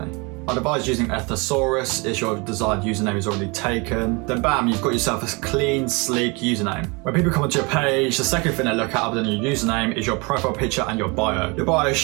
I'd advise using a thesaurus if your desired username is already taken. Then bam, you've got yourself a clean, sleek username. When people come onto your page, the second thing they look at other than your username is your profile picture and your bio. Your bio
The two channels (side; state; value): left; quieter; 28.7 dB